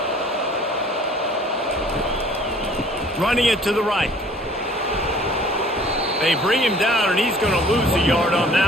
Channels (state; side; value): normal; both; correlation 0.53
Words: Running it to the right. They bring him down, and he's going to lose a yard on